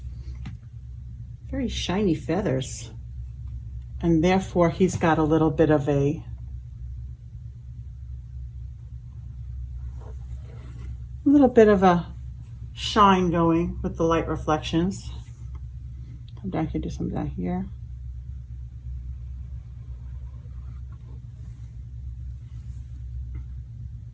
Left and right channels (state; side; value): identical; both; correlation 1.00